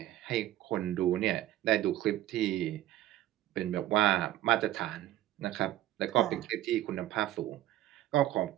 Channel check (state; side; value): quieter; left; 14.3 dB